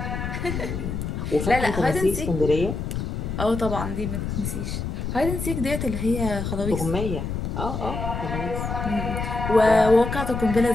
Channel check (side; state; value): left; noise; rumble, 4 dB below the sound